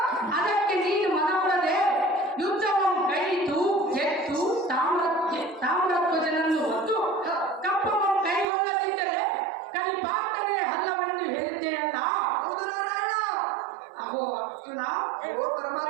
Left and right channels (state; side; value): drops out; left; at 8.5 s